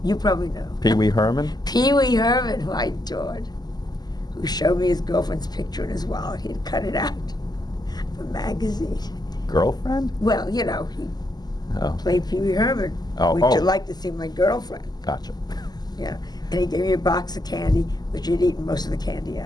You probably know. Pee Wee Herman? Pee Wee Herman, who I adored, who showed me his girlfriend's picture in his wallet. He had cut it out of a magazine. Girlfriend? Well, you know, he played Pee Wee Herman. Oh, Would you like to see my girlfriend? Gotcha. Yeah. And he gave me a box of candy, which he'd eaten most of the candy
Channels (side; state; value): right; late; 0.20 ms